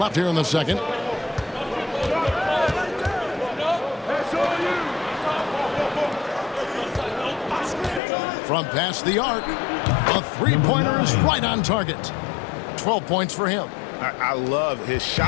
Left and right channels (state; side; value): drops out; right; at 8.0 s